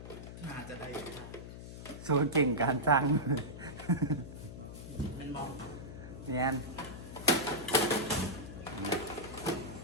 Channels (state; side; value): noise; left; hum, 11 dB below the sound